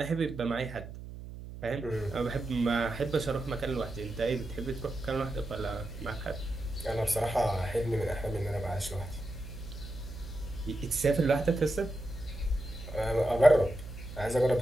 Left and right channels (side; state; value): right; noise; hum, 12 dB below the sound